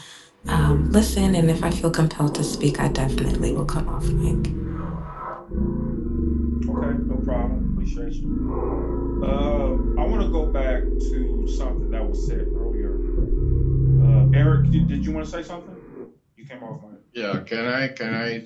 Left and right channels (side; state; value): both; identical; correlation 1.00